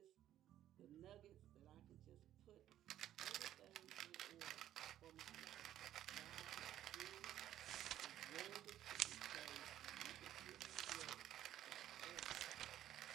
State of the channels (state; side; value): quieter; left; 12.1 dB